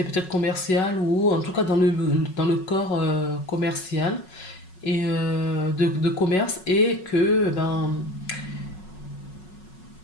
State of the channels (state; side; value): late; right; 5.4 ms